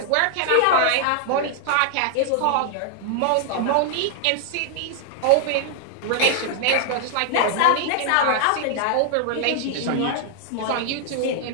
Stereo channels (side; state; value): both; different; correlation 0.00